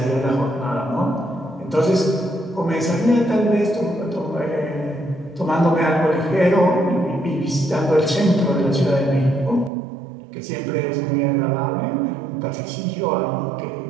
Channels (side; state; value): left; drops out; at 9.7 s